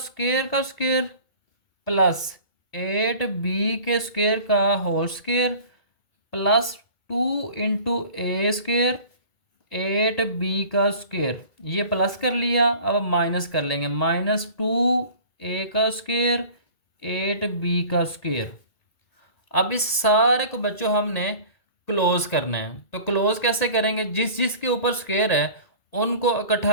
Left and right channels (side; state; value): right; late; 2.2 ms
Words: प्लस 8b के स्क्वायर का होल स्क्वायर प्लस 2 इंटू ए स्क्वायर 8b का स्क्वायर, ये प्लस कर लिया। अब माइनस कर लेंगे, -2a का स्क्वायर 8b का स्क्वायर। अब इस सारे को बच्चों हमने क्लोज करना है, तो क्लोज कैसे करेंगे, जिस जिसके ऊपर स्क्वायर है उनको